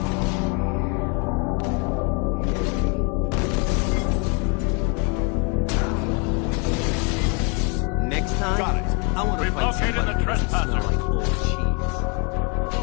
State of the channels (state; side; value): quieter; right; 34.2 dB